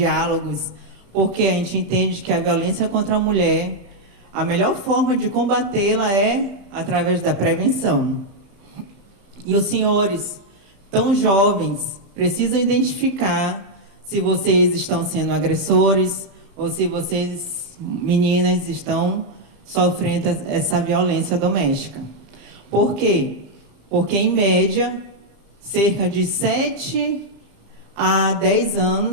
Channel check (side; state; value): left; late; 34 ms